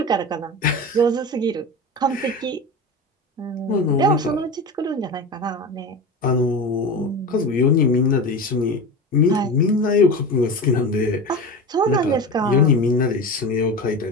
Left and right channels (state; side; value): normal; both; correlation 0.27